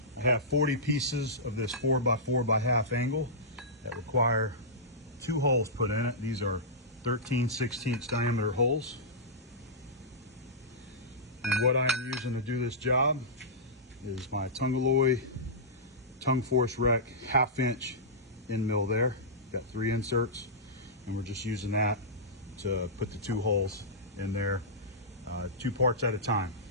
I have 40 pieces of this 4x4x1/2 angle that require 2 holes put in it. These are 13/16 diameter holes. And what I am using to do this job is my Tungalloy tongue force rec 1/2 inch end mill there. Got 3 inserts, and we're just using that to put the 2 holes in there, 2 parts at a time.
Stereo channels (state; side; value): normal; both; correlation -0.14